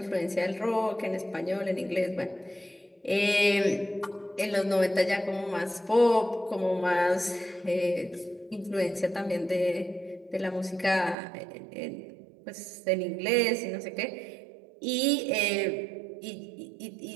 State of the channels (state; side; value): drops out; left; at 11.2 s